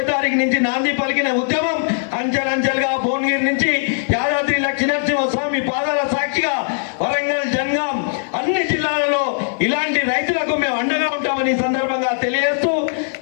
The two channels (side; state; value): right; silent; digital silence